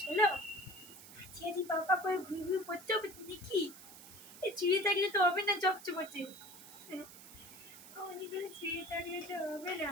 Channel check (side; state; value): right; noise; hiss, 17 dB below the sound